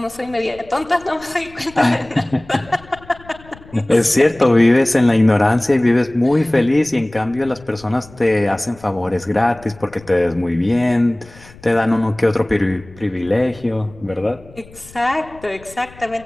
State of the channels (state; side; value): noise; left; rumble, 22 dB below the sound